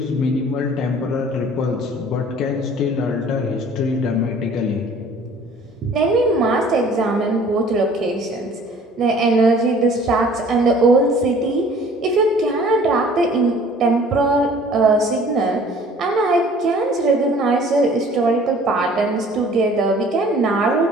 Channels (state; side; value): normal; both; correlation 0.51